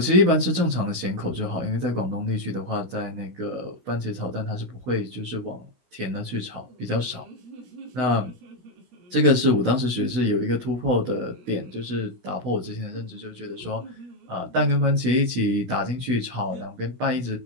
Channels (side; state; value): left; late; 16 ms